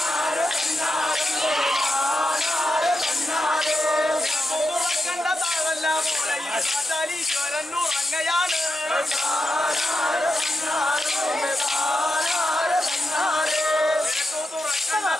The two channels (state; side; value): normal; both; correlation 0.88